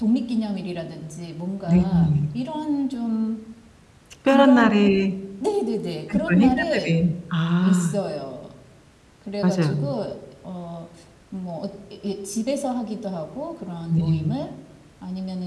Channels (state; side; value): identical; both; correlation 1.00